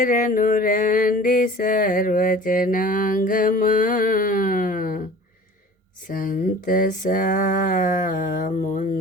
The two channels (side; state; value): both; normal; correlation 0.43